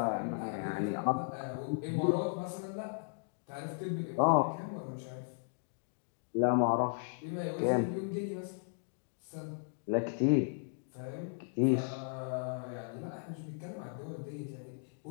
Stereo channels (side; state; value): right; silent; digital silence